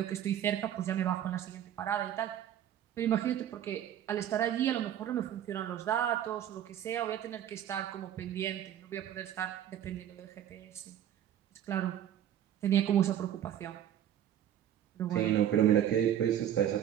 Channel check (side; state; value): left; quieter; 10.7 dB